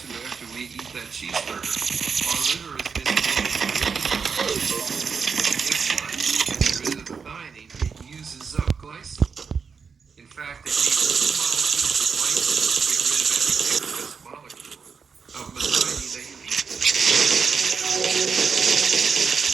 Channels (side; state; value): left; quieter; 5.7 dB